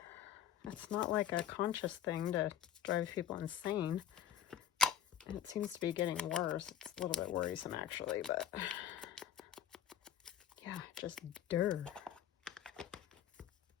It's not like a conscious thing to drive people insane. And it seems to be getting worse. It's a little bit worrisome, actually, but yeah, just dirt.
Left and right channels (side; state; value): right; quieter; 9.5 dB